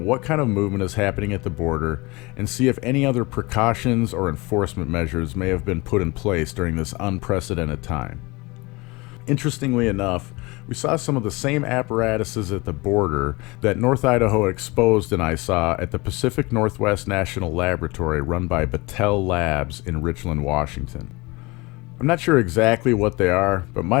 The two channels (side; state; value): right; quieter; 24.3 dB